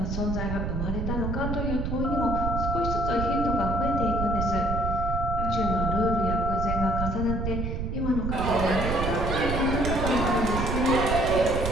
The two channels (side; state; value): right; noise; rumble, 2 dB below the sound